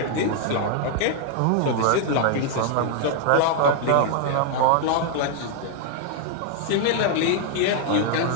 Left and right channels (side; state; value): both; different; correlation 0.00